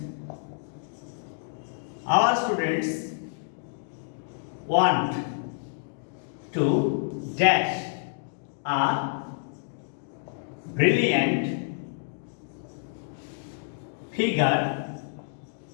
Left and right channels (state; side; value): silent; right; digital silence